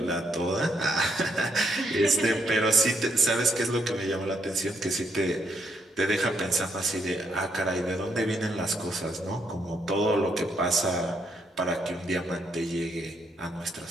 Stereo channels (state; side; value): normal; both; correlation 0.75